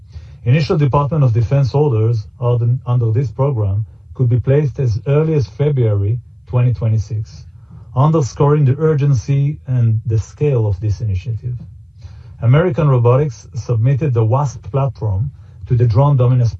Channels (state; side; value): identical; both; correlation 1.00